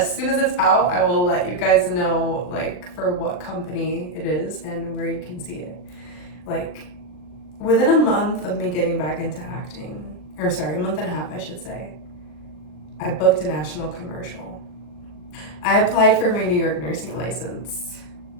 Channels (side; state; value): right; late; 39 ms